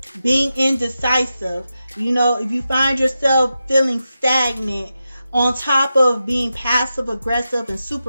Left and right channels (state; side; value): inverted; both; correlation -0.90